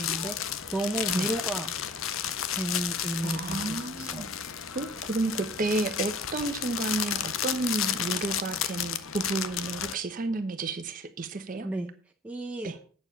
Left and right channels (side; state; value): both; normal; correlation 0.48